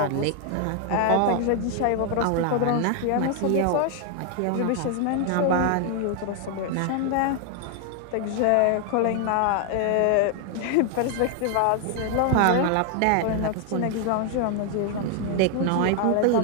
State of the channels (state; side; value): different; both; correlation 0.00